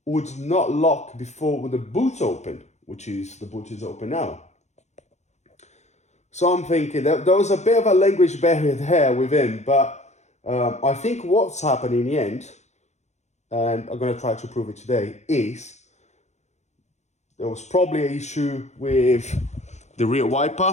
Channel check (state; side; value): late; right; 0.33 ms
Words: would not lock before with the boot open, which is, the boot is open now. So I'm thinking that there was a bit of a language barrier there with him, but I think what's happened in the end, and I'm going to try to prove it today, is there was probably an issue with the rear wiper,